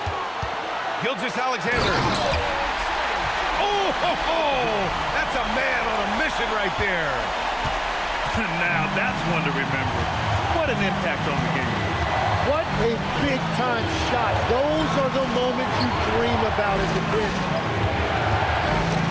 Gilgeous-Alexander. Oh, ho, ho! That's a man on a mission right there. Now that's one to remember. What an impact on the game. What a big-time shot. Those are the moments you dream about as a kid.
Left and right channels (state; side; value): identical; both; correlation 1.00